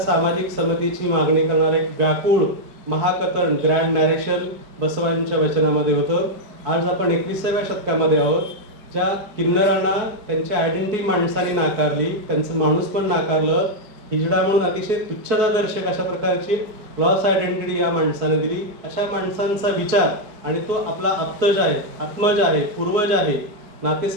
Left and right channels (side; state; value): left; late; 4.7 ms